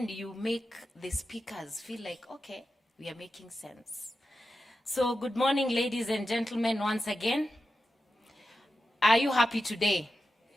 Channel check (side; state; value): both; normal; correlation 0.90